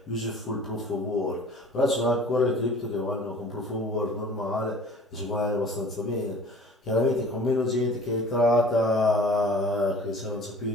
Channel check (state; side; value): normal; both; correlation 0.47